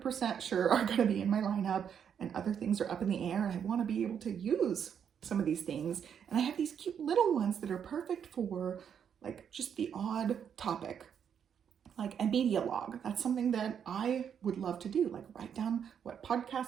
sure are going to be in my lineup, and other things are up in the air, and I want to be able to use some of these things. And I have these cute little ones that are perfect for like just the odd topic, like a media log. That's something that I would love to do, like write down what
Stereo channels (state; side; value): quieter; left; 8.0 dB